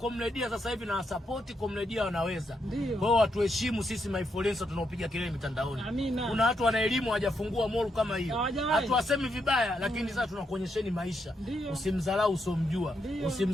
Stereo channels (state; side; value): normal; both; correlation 0.80